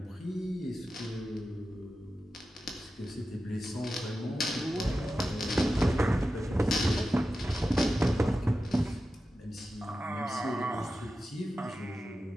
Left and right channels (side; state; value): both; normal; correlation 0.92